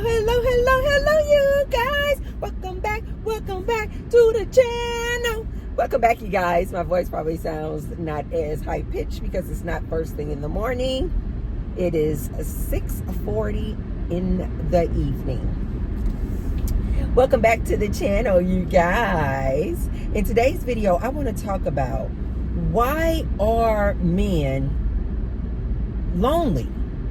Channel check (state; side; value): identical; both; correlation 1.00